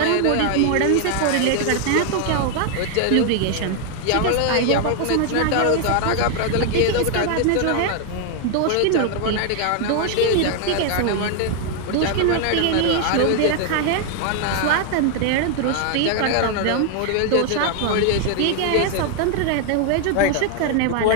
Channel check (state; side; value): different; both; correlation 0.00